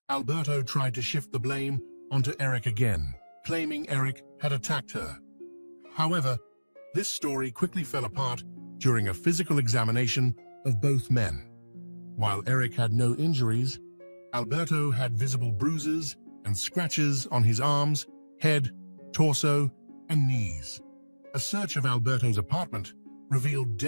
Alberto tried to shift the blame onto Eric again, claiming Eric had attacked her. However, this story quickly fell apart during a physical examination of both men. While Eric had no injuries, Alberto had visible bruises and scratches on his arms, head, torso, and knees. A search of Alberto's apartment revealed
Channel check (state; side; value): inverted; both; correlation -1.00